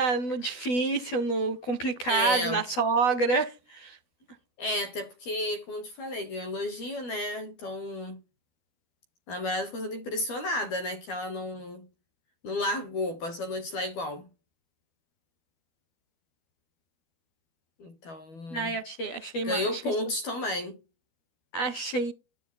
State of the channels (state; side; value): late; right; 12 ms